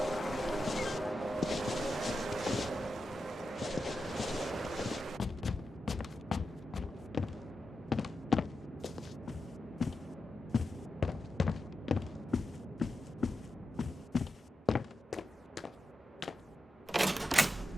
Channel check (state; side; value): normal; both; correlation 0.90